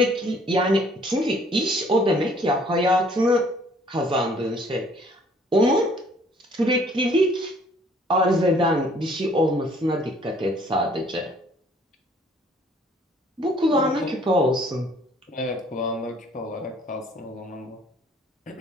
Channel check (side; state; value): both; normal; correlation 0.59